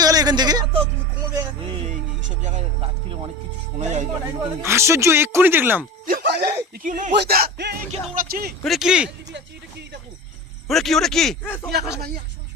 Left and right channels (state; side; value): normal; both; correlation 0.30